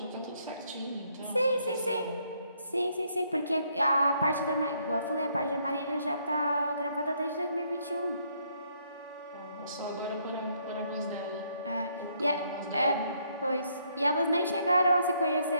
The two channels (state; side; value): inverted; both; correlation -0.71